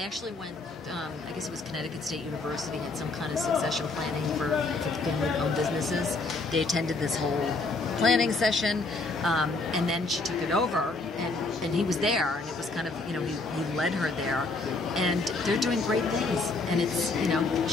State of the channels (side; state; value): right; quieter; 3.4 dB